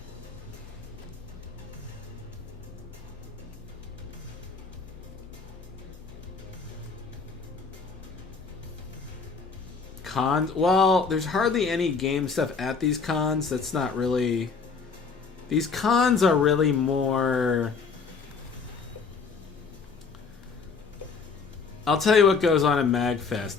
cons. Well, there's hardly any game stuff at these cons. That's not really. These cons are really more. I'll tell you what goes on in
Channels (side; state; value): right; quieter; 5.1 dB